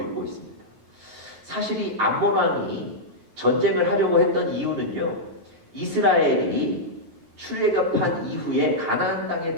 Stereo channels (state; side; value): late; left; 9.1 ms